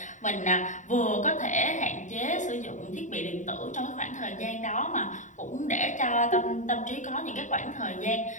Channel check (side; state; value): right; late; 0.36 ms